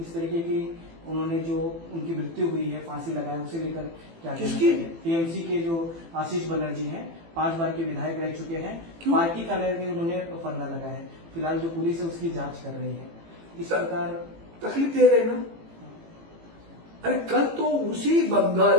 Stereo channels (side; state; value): left; late; 18 ms